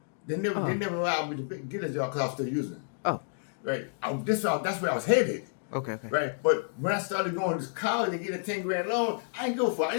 They never allowed me to get a job because I was still using it. Oh, right. That's where I was headed. Okay. Right, but when I started going to college and getting a 10 grand loan, I didn't go for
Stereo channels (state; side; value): silent; right; digital silence